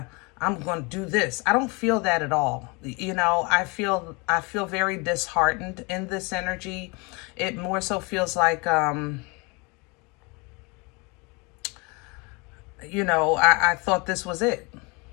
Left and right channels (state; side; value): quieter; right; 28.8 dB